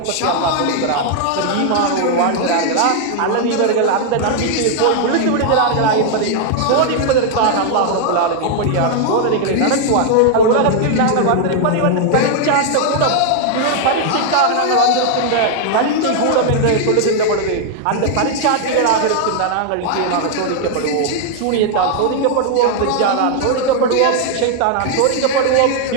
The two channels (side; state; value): both; different; correlation 0.00